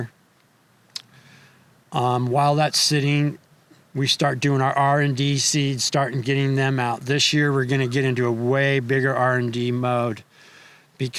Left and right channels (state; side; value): identical; both; correlation 1.00